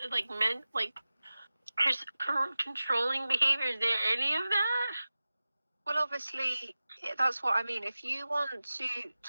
like controlling behavior? Is there any of that? Well, obviously, that's what I mean. If you want to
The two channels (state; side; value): inverted; both; correlation -0.96